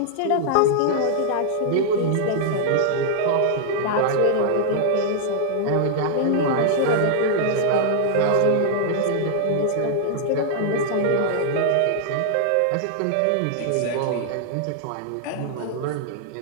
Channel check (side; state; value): both; different; correlation -0.01